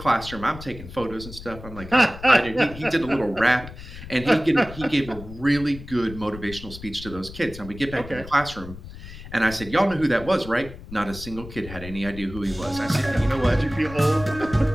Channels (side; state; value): left; noise; rumble, 14 dB below the sound